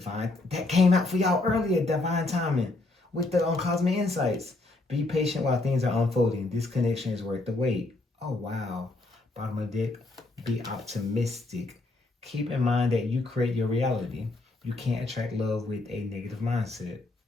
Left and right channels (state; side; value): quieter; right; 3.1 dB